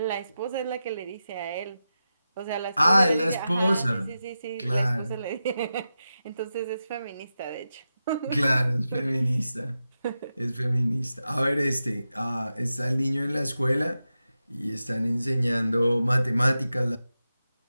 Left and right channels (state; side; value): inverted; both; correlation -0.91